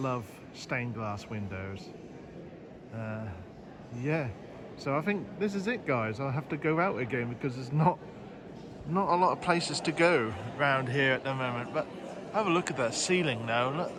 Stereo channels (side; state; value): both; identical; correlation 1.00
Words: stained glass windows. Yeah, so I think this is it, guys. I'll have to go out again because there's not a lot of places to go around here at the moment. But have a look at that ceiling now. Look